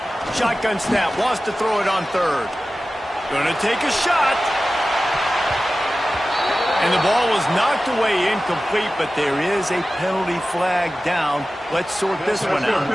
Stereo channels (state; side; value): normal; both; correlation 0.95